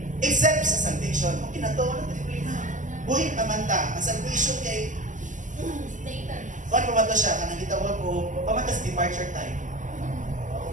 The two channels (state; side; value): late; left; 0.37 ms